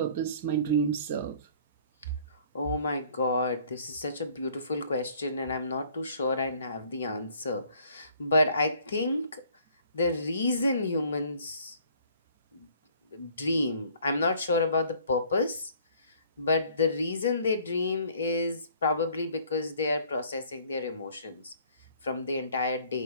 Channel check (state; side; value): inverted; both; correlation -0.57